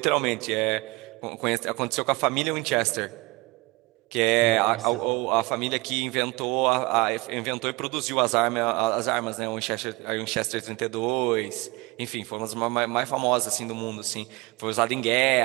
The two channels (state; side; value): quieter; left; 24.0 dB